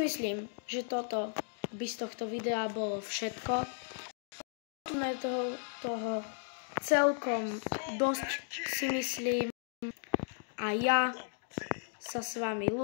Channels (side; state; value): right; silent; 54 dB below the other